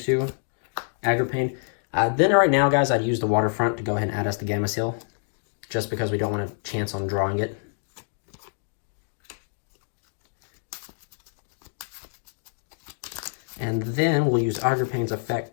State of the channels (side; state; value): right; silent; 61 dB below the other